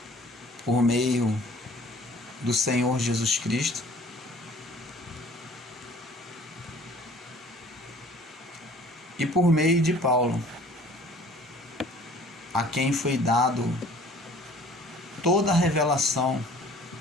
por meio do Senhor Jesus Cristo, e por meio de Paulo, a quem foi dado toda a revelação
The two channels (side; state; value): both; normal; correlation 0.51